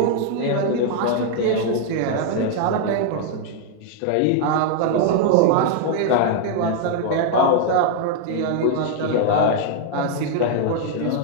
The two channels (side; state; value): both; different; correlation 0.00